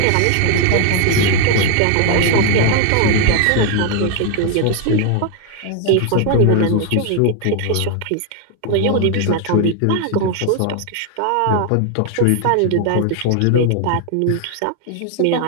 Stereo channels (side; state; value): both; different; correlation 0.00